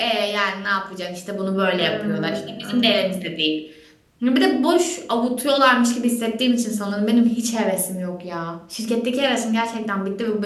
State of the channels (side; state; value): both; identical; correlation 1.00